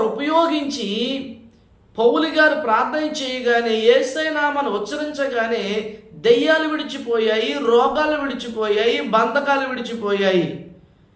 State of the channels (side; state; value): both; identical; correlation 1.00